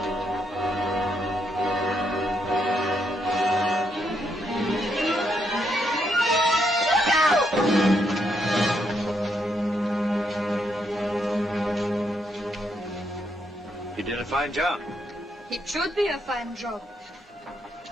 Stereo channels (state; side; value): normal; both; correlation 0.77